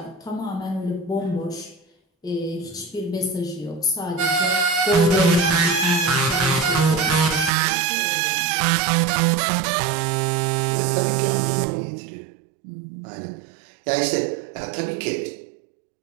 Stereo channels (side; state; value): left; drops out; at 7.5 s